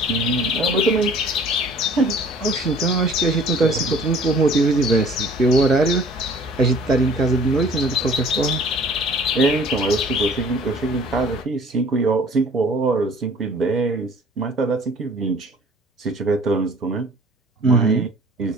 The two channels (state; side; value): normal; both; correlation 0.51